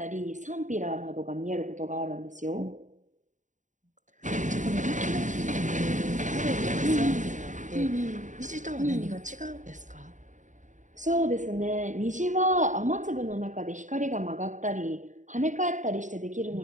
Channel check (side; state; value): left; late; 0.36 ms